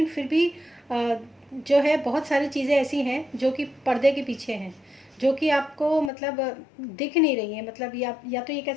फिर भी जो है बहुत सारी चीज़ें ऐसी हैं जो कि पर्दे के पीछे हैं, जो कि आपको मतलब दिख नहीं रही हैं। मतलब या तो ये कह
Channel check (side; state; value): right; drops out; at 6.1 s